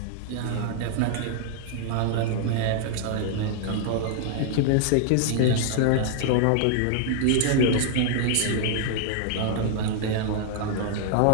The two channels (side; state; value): both; different; correlation -0.01